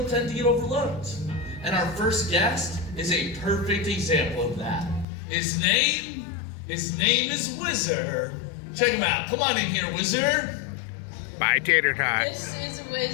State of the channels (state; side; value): drops out; right; at 5.1 s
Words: tend to get overlooked. And our first guest is a perfect example of that. His name is Whizzer. Check him out. Come on in here, Whizzer. Bye, Tater Tot. This is